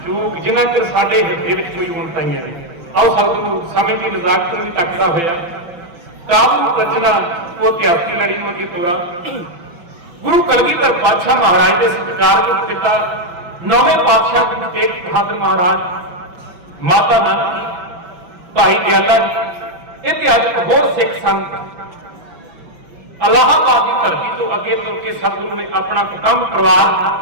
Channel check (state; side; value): late; left; 6.0 ms